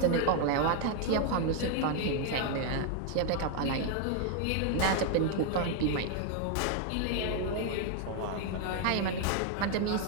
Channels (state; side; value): different; both; correlation 0.00